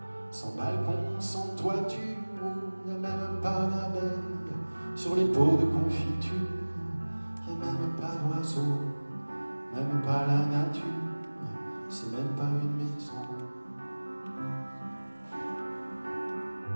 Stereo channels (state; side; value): inverted; both; correlation -1.00